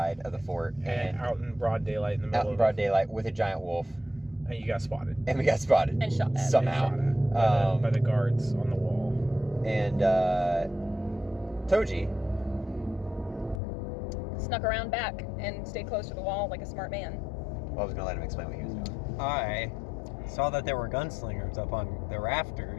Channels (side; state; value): right; drops out; at 13.6 s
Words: of the fort, And and out in broad daylight in the middle out in of broad daylight with a giant wolf, and you got spotted. and we got spotted And shot at. somehow. Shot at by the guards on the wall. And Toji, Snuck around back and stayed close to the wall like a smart man. well, I was gonna let him explain what he was doing. I saw that there were gunslingers up on the